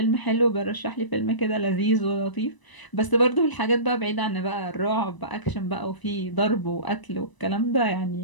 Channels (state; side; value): late; right; 1.0 ms